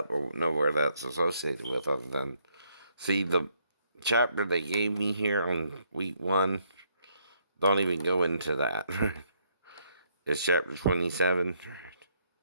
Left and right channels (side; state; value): both; inverted; correlation -0.72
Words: or know where that's associated with, other than see the chapter they gave me here on week 1. Don't even go into that. It's chapter 27.